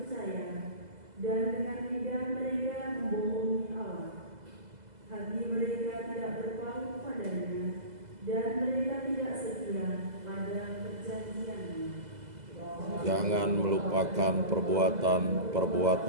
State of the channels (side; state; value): left; late; 2.0 ms